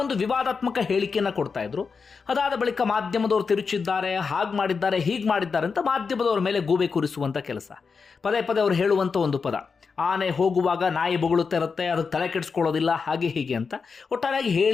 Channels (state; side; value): quieter; right; 5.2 dB